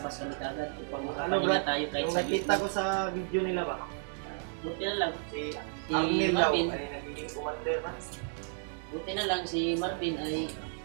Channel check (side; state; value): left; silent; 56 dB below the other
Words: kami kagad upang makapahinga tayo kahit Yung sa nakita ko sa video nila ba? buti na lang Si Arnel daw Marvin, ay nagiging commander na. buti na lang si Marvin ay